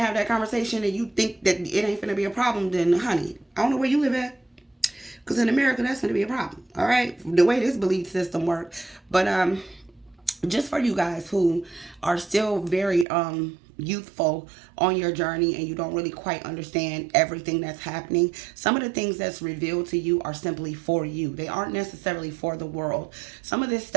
have that conversation and you think that it ain't going to be a problem, then honey, I don't know where you live at. Because in America, that's going to be a problem. All right. The way this belief system works. But just for you guys who are still very youthful on your journey and you don't really quite understand everything that's happening, some of the things that's revealed to you are simply for you. They aren't necessarily for the world. Some of this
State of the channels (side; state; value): left; drops out; at 13.1 s